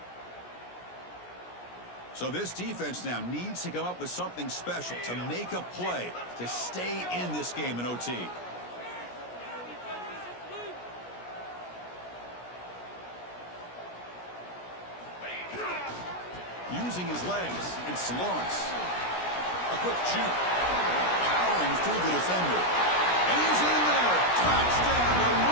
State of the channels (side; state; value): right; late; 17 ms